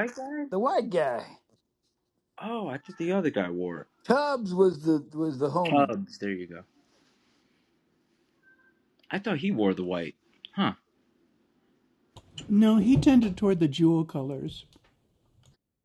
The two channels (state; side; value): identical; both; correlation 1.00